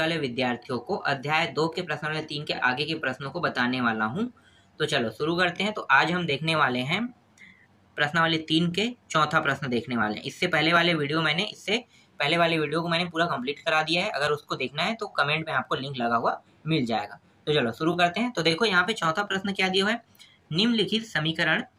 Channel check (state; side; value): identical; both; correlation 1.00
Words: विद्यार्थियों को अध्याय 2 के प्रश्न 3 के आगे के प्रश्नों को बताने वाला हूं। तो चलो शुरू करते हैं। तो आज हम देखने वाले हैं प्रश्नावली 3 के चौथा प्रश्न देखने वाले हैं। इससे पहले वाले वीडियो को मैंने पूरा कंप्लीट करा दिया है। अगर उसको देखना है तो कमेंट में आपको लिंक लगा हुआ मिल जाएगा। तो चलो शुरू करते हैं। तो देखो यहाँ पे चौथा प्रश्न क्या दिया हुआ है, निम्नलिखित समीकरण